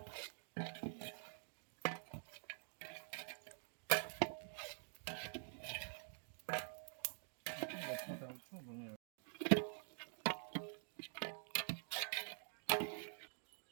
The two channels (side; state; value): left; silent; digital silence